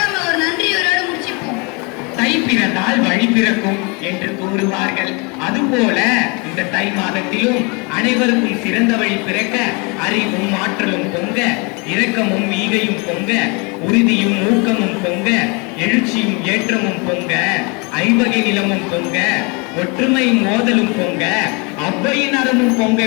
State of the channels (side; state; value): right; quieter; 30.7 dB